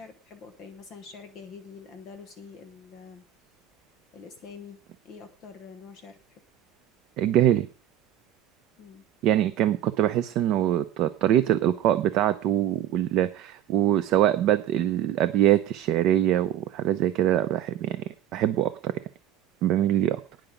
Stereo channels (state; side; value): quieter; left; 11.6 dB